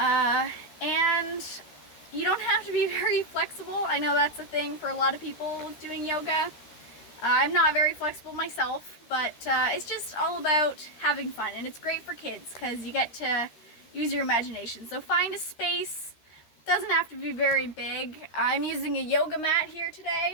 And you don't have to be very flexible. I know that's a thing for a lot of people doing yoga. I'm not very flexible myself, but it's just all about having fun, and it's great for kids because you get to use your imagination. So find a space. It doesn't have to be very big. I'm using a yoga mat here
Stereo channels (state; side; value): late; right; 13 ms